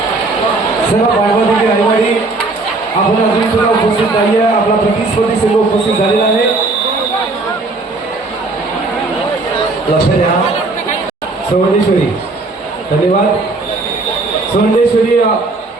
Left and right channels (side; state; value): left; quieter; 3.3 dB